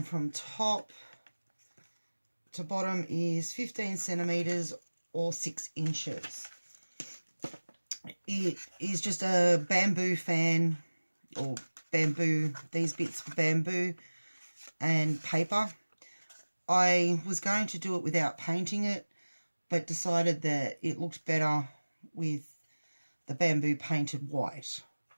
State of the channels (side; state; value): both; inverted; correlation -1.00